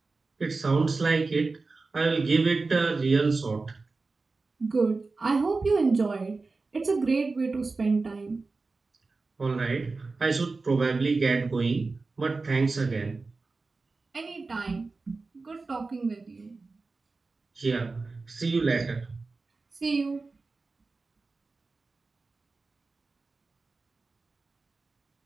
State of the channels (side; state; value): left; quieter; 3.8 dB